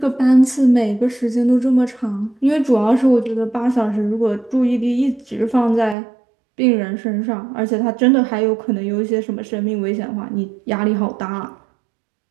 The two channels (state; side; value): drops out; left; at 6.0 s